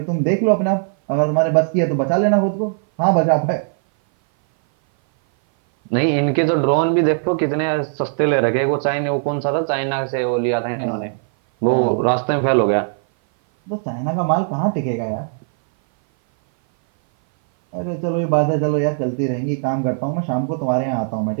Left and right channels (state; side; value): silent; left; 58 dB below the other